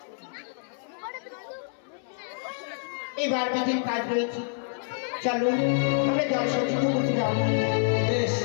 এবার বিধির কাজ রয়েছে, চলো আমরা জল সঞ্চিত করতে যাবো। বেশ,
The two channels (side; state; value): right; silent; 60 dB below the other